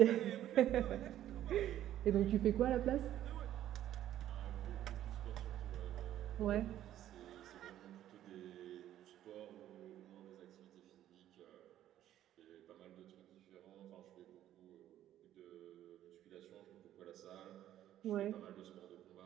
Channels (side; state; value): left; quieter; 12.2 dB